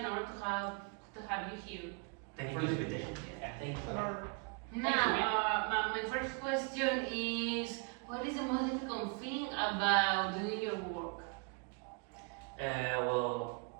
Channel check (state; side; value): quieter; left; 35.8 dB